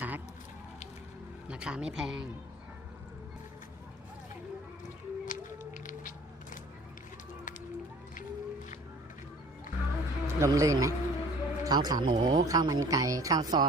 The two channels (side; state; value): both; normal; correlation 0.48